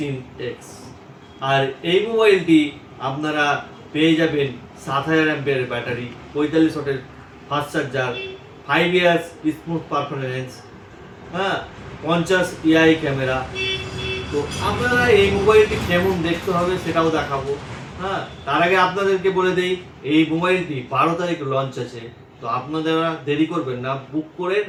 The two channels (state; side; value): identical; both; correlation 1.00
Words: আর এই মোবাইলটি আপনারা পেয়ে যাবেন 7000 অ্যাম্পিয়ারের ব্যাটারি, 45 ওয়াটের fast charger, 5 years smooth performance, 50 AI camera. তো আপনারা এই মোবাইলটি কেমন দেখতে হবে সেটাও দেখাবো। তার আগে আপনাদেরকে বলে দেই, এই মোবাইলটি 12 তারিখ লঞ্চ আছে। তো আপনারা দেরি করবেন না, বুক করেন